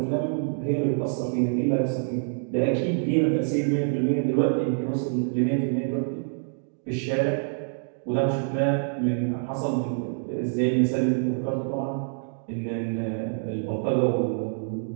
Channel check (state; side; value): silent; left; digital silence